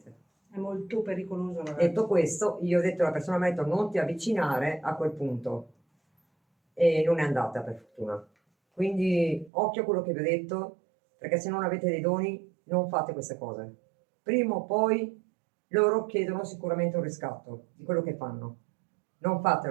È molto pericoloso, ragazzi. Detto questo, io ho detto alla persona, mi ha detto non ti avvicinare a quel punto e non è andata per fortuna. Quindi occhio a quello che vi ho detto, perché se non avete dei doni non fate queste cose. Prima o poi loro chiedono sicuramente un riscatto di quello che fanno. Non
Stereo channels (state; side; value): drops out; left; at 9.5 s